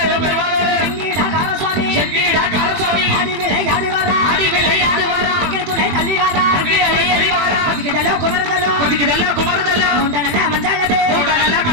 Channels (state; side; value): late; left; 21 ms